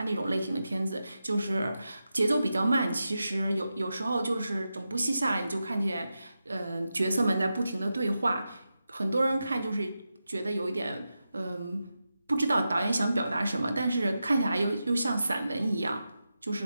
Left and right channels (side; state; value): both; inverted; correlation -0.90